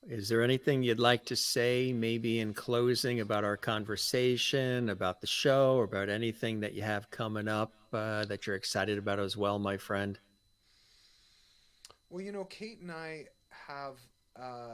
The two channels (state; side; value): identical; both; correlation 1.00